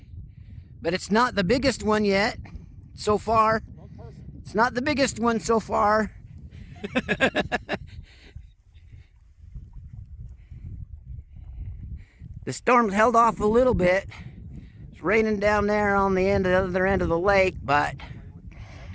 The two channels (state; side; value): identical; both; correlation 1.00